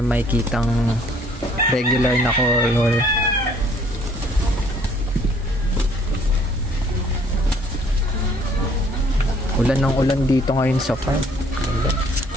may kitang regular na color. Ulan ng ulan dito ngayon sa farm.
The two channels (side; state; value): both; normal; correlation 0.60